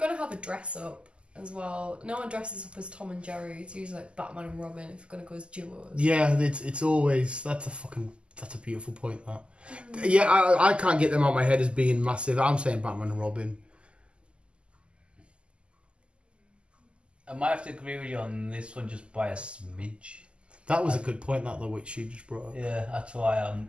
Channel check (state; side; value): late; left; 0.052 ms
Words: have a dress up as well, no one dresses up as Tom and Jerry, it's usually like Batman and Robin if you're gonna go as duos. Yeah, it's always that's a beautiful point. That. Yeah, I can't get them out of my head as being massive. I'm saying Batman and Robin. I might have to agree with you on this one just by a smidge. That was a good point, that though, which you just brought up. Yeah, that's why